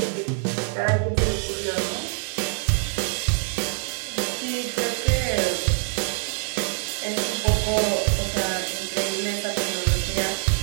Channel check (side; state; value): left; silent; digital silence